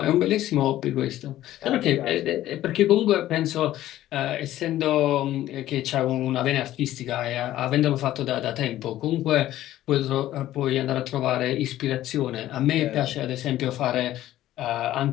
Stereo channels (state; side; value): quieter; right; 13.9 dB